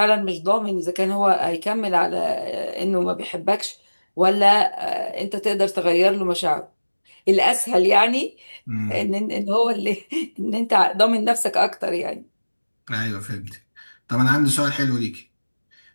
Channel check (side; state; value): both; inverted; correlation -1.00